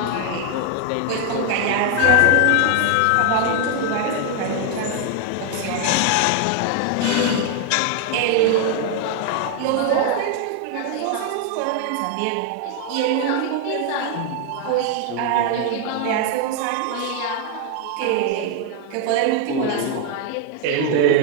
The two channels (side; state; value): both; different; correlation 0.00